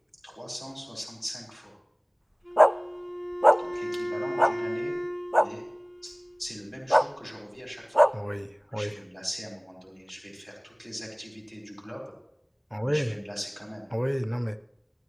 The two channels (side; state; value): both; identical; correlation 1.00